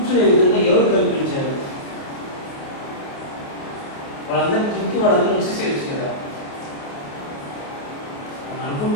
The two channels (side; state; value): right; late; 28 ms